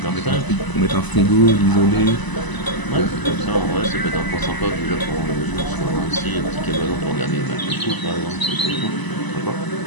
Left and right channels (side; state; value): right; late; 1.0 ms